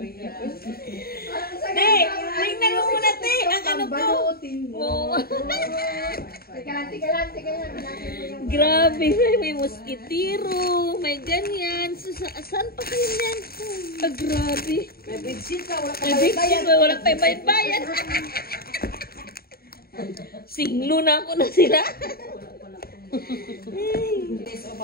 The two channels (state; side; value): late; right; 0.44 ms